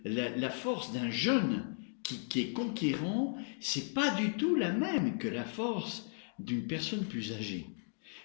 la force d'un jeune qui est conquérant, c'est pas du tout la même que la force d'une personne plus âgée.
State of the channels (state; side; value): silent; right; 54 dB below the other